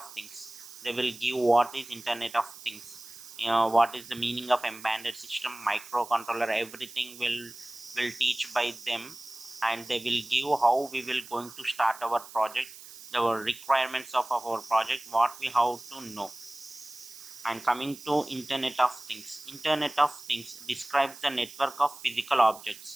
Things. They will give what is Internet of Things, what is the meaning of embedded system, microcontroller. Everything will teach by them, and they will give how we will going to start our project, the requirements of our project, what we have to know. And coming to Internet of Things describes the network of physical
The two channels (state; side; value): noise; right; hiss, 16 dB below the sound